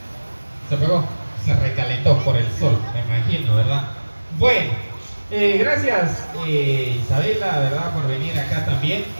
se pegó, se recalentó por el sol, me imagino, ¿verdad? Bueno, gracias Isabela, ¿verdad? Por venir acá también.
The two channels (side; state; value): both; inverted; correlation -1.00